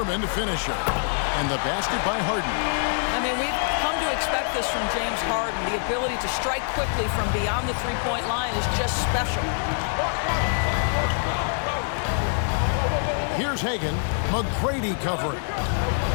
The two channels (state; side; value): silent; right; 62 dB below the other